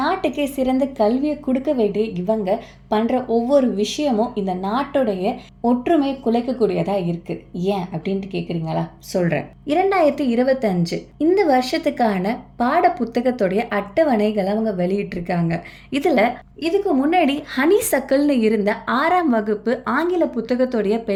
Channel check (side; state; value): both; identical; correlation 1.00